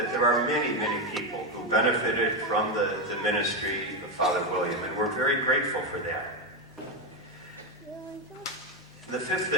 there are many, many people who benefited from the ministry of Father William, and we're very grateful for that. The fifth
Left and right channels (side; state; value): right; noise; hum, 29 dB below the sound